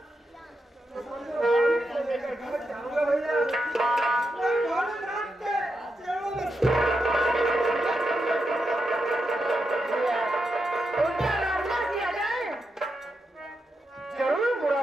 तो समझो मैं लेकर घर जाऊंगा भैया। नहीं बोले रात के चलो उनका रास्ता किया जाए, जरूर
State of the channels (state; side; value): normal; both; correlation 0.86